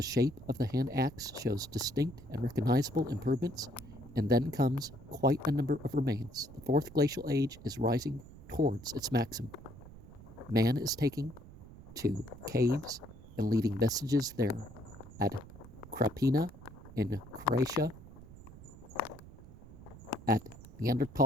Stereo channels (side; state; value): right; noise; rumble, 17 dB below the sound